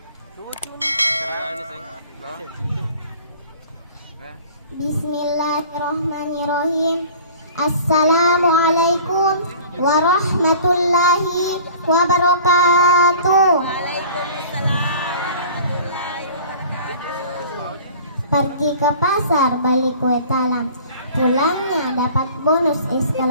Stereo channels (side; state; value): both; inverted; correlation -0.45